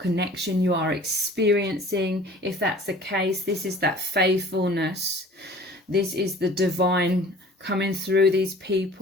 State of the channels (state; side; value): normal; both; correlation 0.47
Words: you are experiencing. If that's the case, this is that faithfulness. This is the divine coming through these